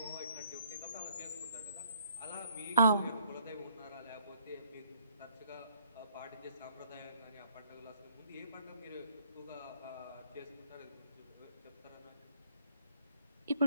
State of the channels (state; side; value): inverted; both; correlation -0.64